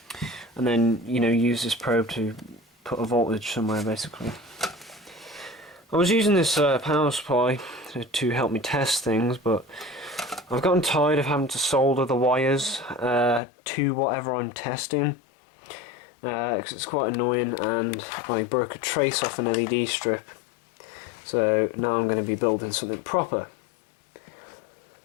and then use this probe to put a voltage somewhere. Basically I was using this power supply to help me test things, but I've gotten tired of having to solder the wires to whatever I'm testing, because it's quite annoying, and I broke a trace off an LED strip, so now I'm going to be building something proper.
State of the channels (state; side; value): drops out; right; at 13.4 s